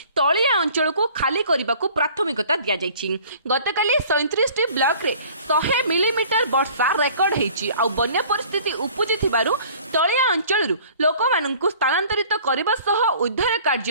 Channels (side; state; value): both; inverted; correlation -0.50